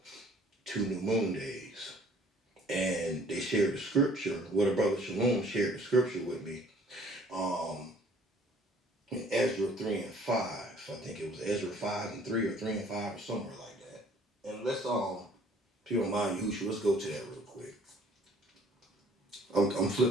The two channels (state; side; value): normal; both; correlation 0.56